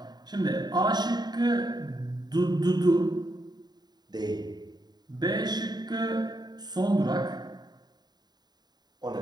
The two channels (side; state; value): left; late; 0.20 ms